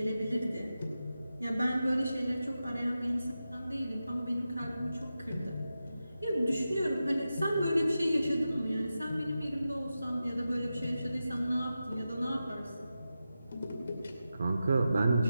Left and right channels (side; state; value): both; inverted; correlation -0.91